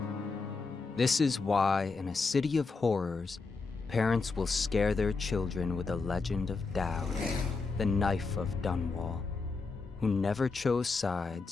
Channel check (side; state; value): right; quieter; 4.3 dB